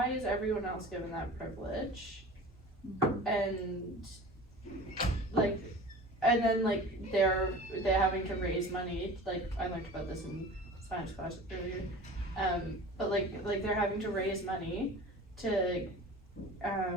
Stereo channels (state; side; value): normal; both; correlation 0.38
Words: is everyone else given that privilege, Mhm. and then like they're having to raise money. Like I learned about this in science class earlier, but like they're having to raise money to